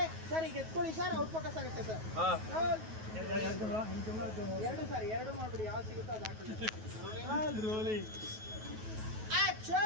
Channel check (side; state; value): left; late; 9.3 ms